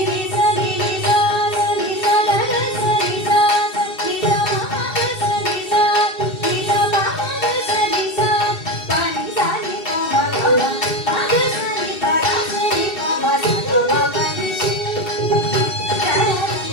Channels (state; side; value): late; right; 2.7 ms